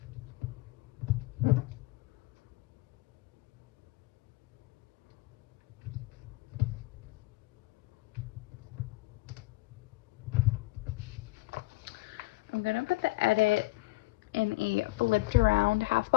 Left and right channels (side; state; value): right; quieter; 21.3 dB